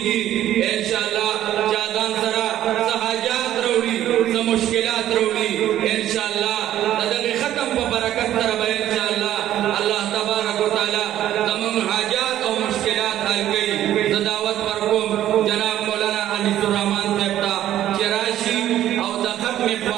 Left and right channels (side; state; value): left; quieter; 12.4 dB